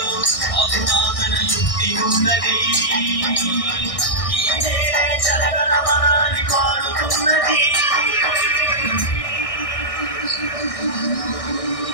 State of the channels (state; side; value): late; right; 1.6 ms